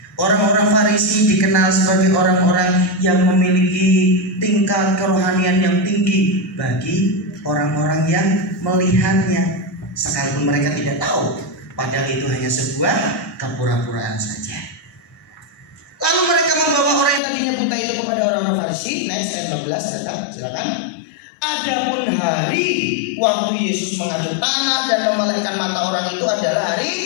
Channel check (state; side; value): drops out; right; at 17.2 s